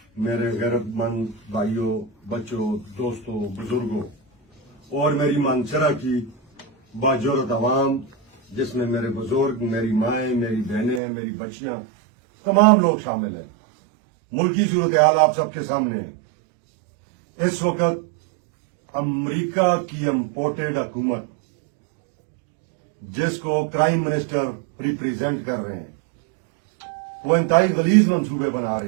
میرے غیرت مند بھائیوں، بچوں، دوستوں، بزرگوں اور میری مانسرا کی باجورت عوام، جس میں میرے بزرگ، میری مائیں، میری بہنیں، میری بچیاں، تمام لوگ شامل ہیں۔ ملکی صورتحال آپ سب کے سامنے ہے۔ اس وقت امریکہ کی امپورٹڈ حکومت، جس کو پرائم منسٹر ریپریزنٹ کر رہے ہیں، وہ انتہائی غلیظ منصوبے بنا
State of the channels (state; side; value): drops out; left; at 11.0 s